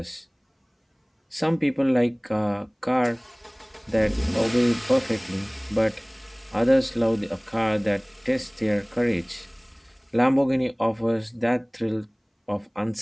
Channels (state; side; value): identical; both; correlation 1.00